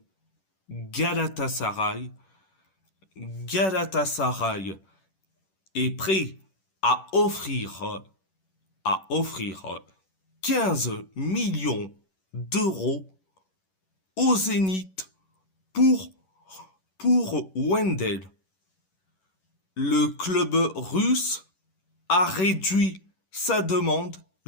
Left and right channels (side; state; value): right; late; 11 ms